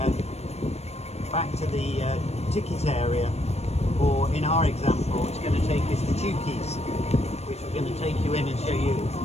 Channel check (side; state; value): right; late; 0.31 ms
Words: the ticket area, or in our example, it's going to take us to Chookies, which we're going to take you in and show you.